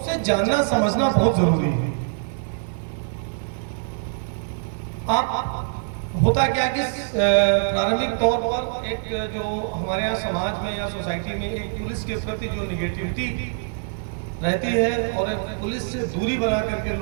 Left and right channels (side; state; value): left; silent; digital silence